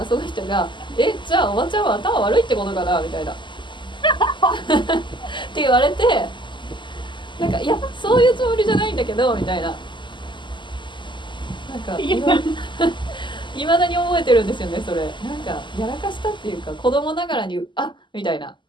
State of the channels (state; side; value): late; right; 0.23 ms